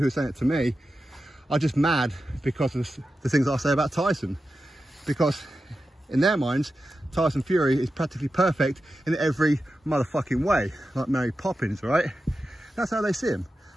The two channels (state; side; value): normal; both; correlation 0.91